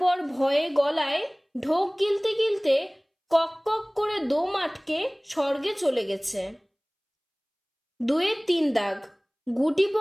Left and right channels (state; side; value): identical; both; correlation 1.00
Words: ভয়ে গলায় ঢোক গিলতে গিলতে কক কক করে দম আটকে স্বর্গে চলে গেছে। 2-এর 3 দাগ। গুটি